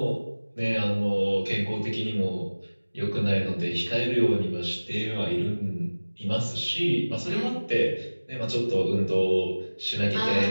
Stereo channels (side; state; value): both; inverted; correlation -1.00